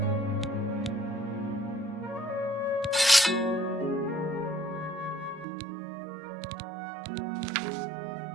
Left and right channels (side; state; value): left; drops out; at 5.5 s